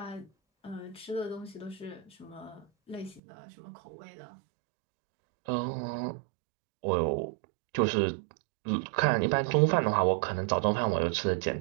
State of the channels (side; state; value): left; drops out; at 3.2 s